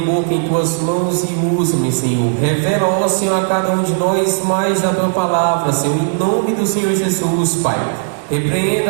em tuas mãos e usa-me, Senhor. Revela, ó Senhor, a cada um de nós mais da tua palavra, Senhor, em nome do Senhor Jesus, Pai.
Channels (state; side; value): silent; left; digital silence